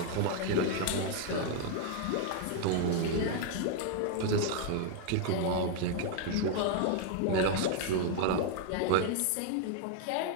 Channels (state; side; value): different; both; correlation 0.00